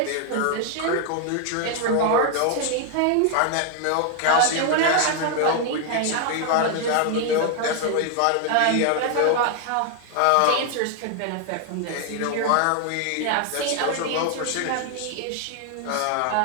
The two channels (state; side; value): different; both; correlation 0.00